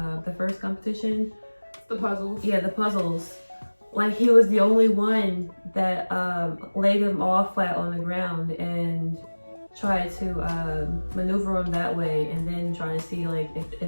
first competition. The puzzles. Yeah, the puzzles. Like, he was the only one that laid them all flat on the ground, and try to maneuver them that way, and then try to see like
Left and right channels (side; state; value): both; inverted; correlation -1.00